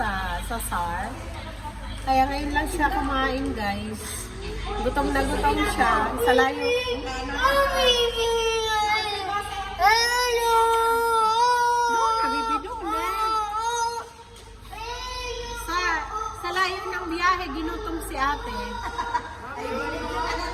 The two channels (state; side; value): identical; both; correlation 1.00